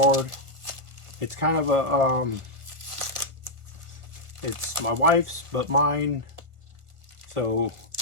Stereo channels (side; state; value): left; late; 1.5 ms